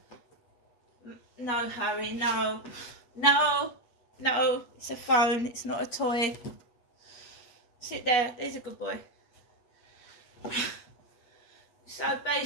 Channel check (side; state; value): right; late; 8.2 ms